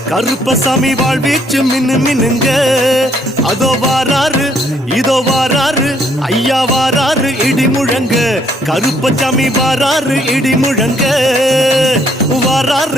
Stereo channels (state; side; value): normal; both; correlation 0.68